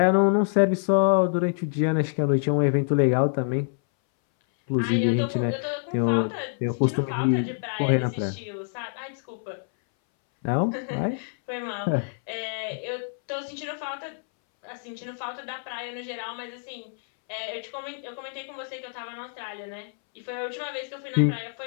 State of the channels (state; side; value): silent; right; 61 dB below the other